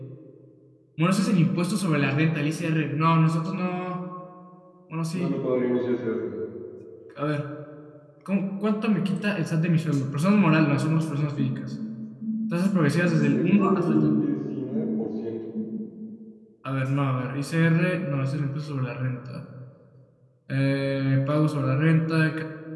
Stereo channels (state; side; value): identical; both; correlation 1.00